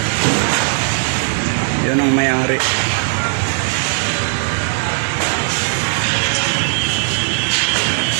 Yun ang may-ari.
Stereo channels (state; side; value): silent; left; 66 dB below the other